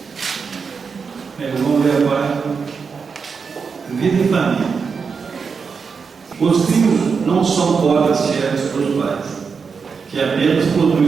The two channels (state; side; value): quieter; left; 5.5 dB